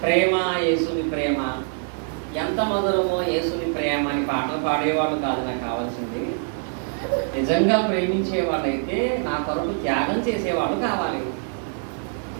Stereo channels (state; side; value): silent; left; 58 dB below the other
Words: ప్రేమ యేసుని ప్రేమ ఎంత మధురమో, యేసుని ప్రేమ అని పాటలు పాడేవాళ్ళు కాదు నాకు కావాల్సింది. నిజంగా ప్రేమించే వాళ్ళైతే నా కొరకు త్యాగం చేసేవాళ్ళు కావాలి.